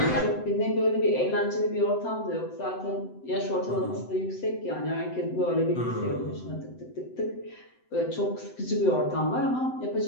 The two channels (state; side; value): late; right; 7.9 ms